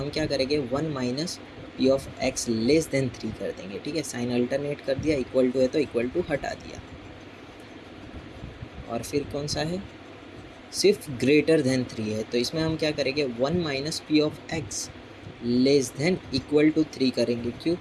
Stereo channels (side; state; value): both; identical; correlation 1.00